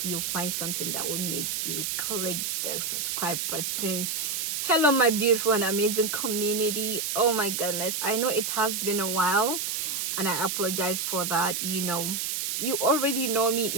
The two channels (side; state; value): right; noise; hiss, 1 dB below the sound